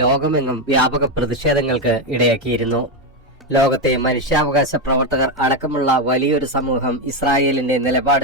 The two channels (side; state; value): both; normal; correlation 0.08